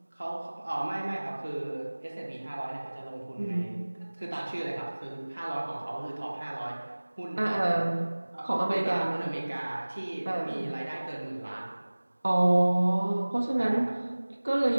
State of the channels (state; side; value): inverted; both; correlation -1.00